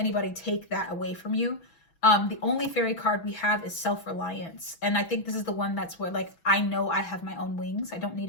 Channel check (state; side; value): late; right; 6.1 ms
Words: take that away from you. The only fairy card we have is self-reliance. And I think this is the one that's where, like, I know I have my own wings. I don't need